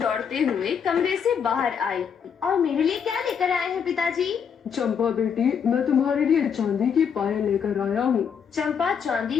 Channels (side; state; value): right; quieter; 7.2 dB